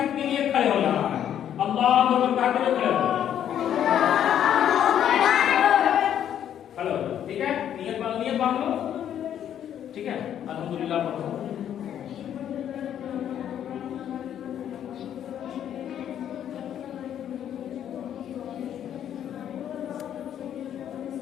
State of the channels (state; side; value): quieter; right; 10.0 dB